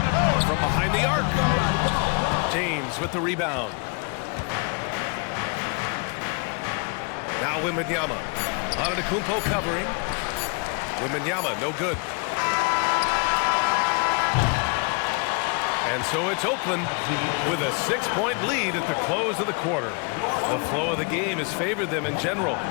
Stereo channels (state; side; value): quieter; right; 33.3 dB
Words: From behind the arc. James with the rebound. Now Wembanyama. Antetokounmpo covering. Wembanyama no good. And so it's Oakland with a 6-point lead at the close of the quarter. The flow of the game has favored them in general.